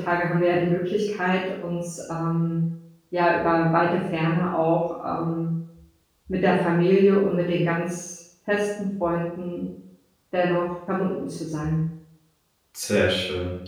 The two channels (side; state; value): both; identical; correlation 1.00